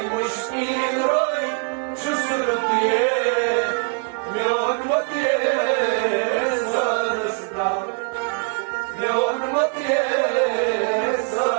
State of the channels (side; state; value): left; quieter; 38.8 dB